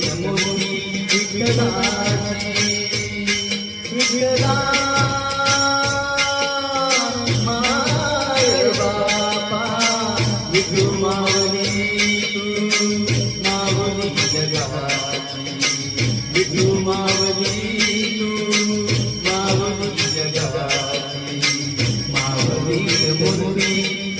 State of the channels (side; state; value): both; identical; correlation 1.00